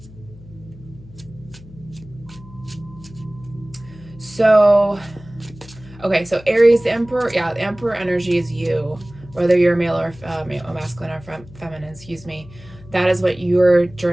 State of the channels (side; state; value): left; noise; hum, 20 dB below the sound